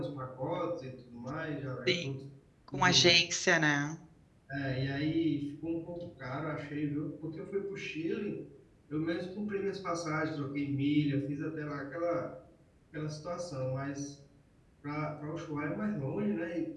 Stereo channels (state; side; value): identical; both; correlation 1.00